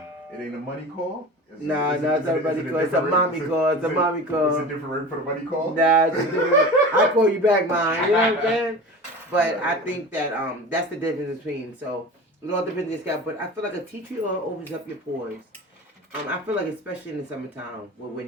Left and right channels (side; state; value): both; normal; correlation 0.34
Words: It ain't a money call? No, it's not a money call. It's a mommy call. It's a mommy call. Is it different rate for the money call? Nah, it's different. I'll call you back, mine. You know what I'm saying? But I think that that's the difference between. So it all depends on your scalp. But I feel like a tea tree oil opens up your pores. I feel like especially in the summertime where we're